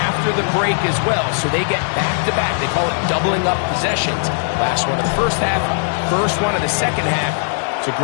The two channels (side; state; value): right; silent; 57 dB below the other